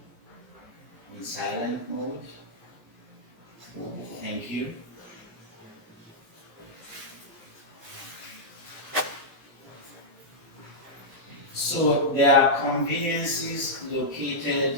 in silent mode. Thank you. So there are conveniences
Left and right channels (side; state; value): both; normal; correlation -0.09